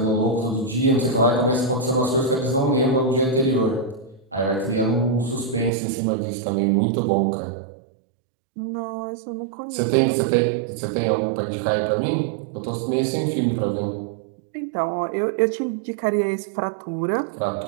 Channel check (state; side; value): drops out; left; at 5.7 s